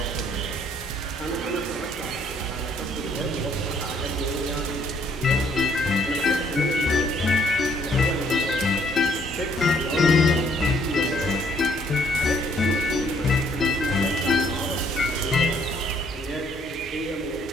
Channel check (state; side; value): normal; both; correlation 0.65